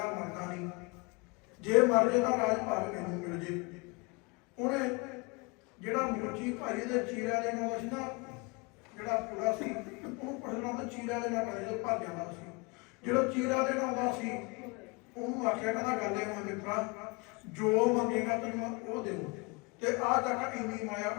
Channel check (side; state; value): right; quieter; 28.6 dB